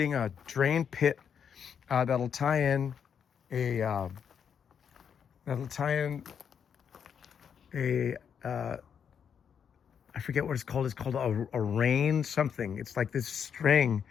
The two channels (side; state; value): right; quieter; 7.6 dB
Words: a drain pit that'll tie in a I forget what it's called. It's called a rain something. It's like this string.